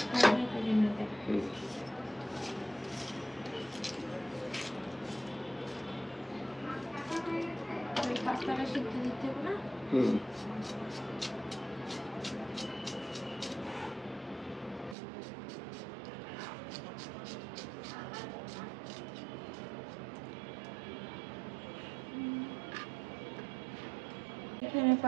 পাস্তাটা সিদ্ধ দিতে হবে না। হুম এখানে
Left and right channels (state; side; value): drops out; left; at 15.0 s